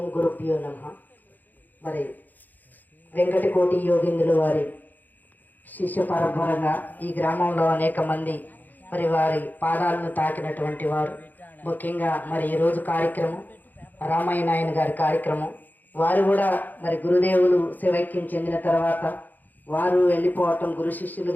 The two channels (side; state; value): right; late; 0.085 ms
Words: గురుభ్యో నమ. మరి వెంకటకోటి యోగిందుల వారి శిష్య పరంపరంగా ఈ గ్రామంలో అనేక మంది మరి వారి పాదాలను తాకినటువంటి వారు. ముఖ్యంగా మరి ఈరోజు కార్యక్రమం రామయ్య నాయన గారి కార్యక్రమం. వారు కూడా మరి గురుదేవులు శివైక్యం చెందిన తర్వాత వారు వెళ్ళిపోవటం, గురు